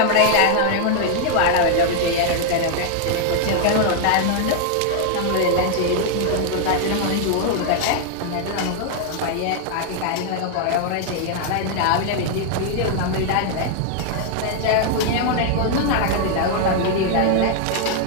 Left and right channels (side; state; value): both; different; correlation 0.00